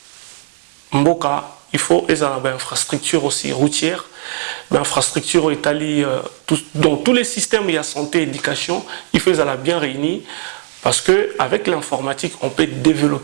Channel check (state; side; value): silent; left; 68 dB below the other